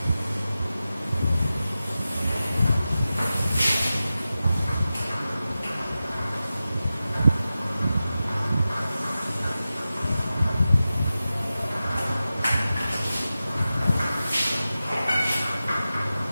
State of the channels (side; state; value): both; inverted; correlation -0.94